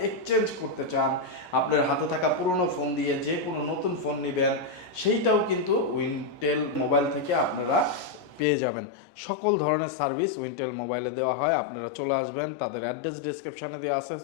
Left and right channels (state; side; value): drops out; right; at 8.5 s